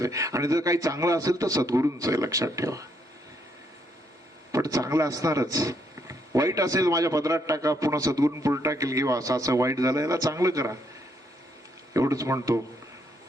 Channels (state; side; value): normal; both; correlation 0.73